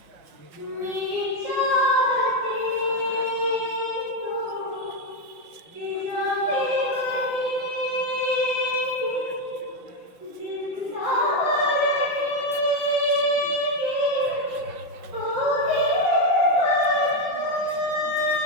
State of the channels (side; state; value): left; late; 5.9 ms